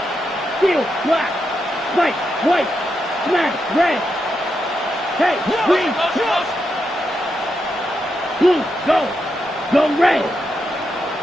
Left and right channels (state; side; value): normal; both; correlation 0.84